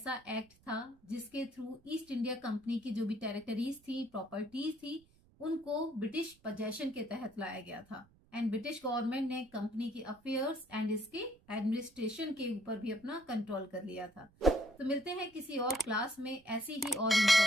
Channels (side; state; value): right; noise; rumble, 30 dB below the sound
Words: एक्ट था जिसके थ्रू ईस्ट इंडिया कंपनी की जो भी टेरिटरीज थी, प्रॉपर्टीज थी, उनको ब्रिटिश पजेशन के तहत लाया गया था एंड ब्रिटिश गवर्नमेंट ने कंपनी के अफेयर्स एंड इसके एडमिनिस्ट्रेशन के ऊपर भी अपना कंट्रोल कर लिया था। तो मिलते हैं किसी और क्लास में ऐसी ही और